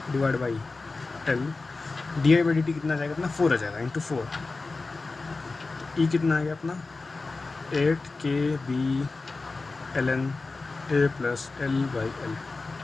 divide by l di/dt कितना आ जाएगा अपना 4 आ जाएगा इंटू 4। ई कितना आ गया अपना 8ke/b ln a plus l/l।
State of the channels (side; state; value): right; quieter; 3.7 dB